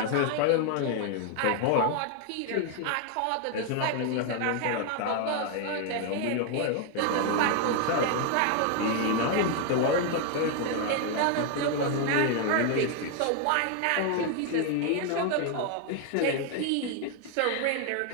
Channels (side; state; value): both; different; correlation 0.01